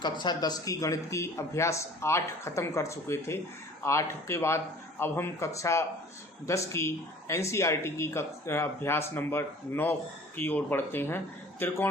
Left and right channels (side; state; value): both; normal; correlation 0.48